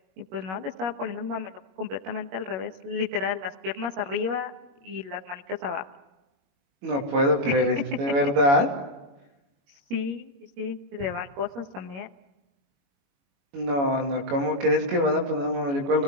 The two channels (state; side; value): late; left; 21 ms